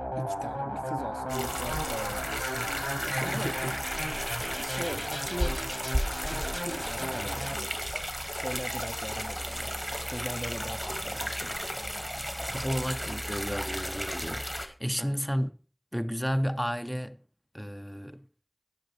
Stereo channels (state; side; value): identical; both; correlation 1.00